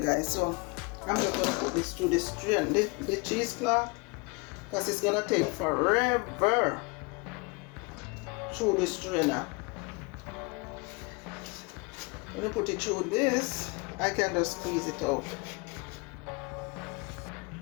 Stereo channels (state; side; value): quieter; right; 29.1 dB